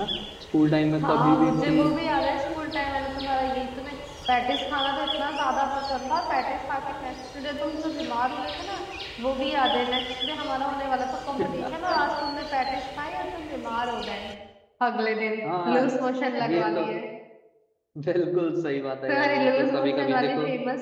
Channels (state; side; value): identical; both; correlation 1.00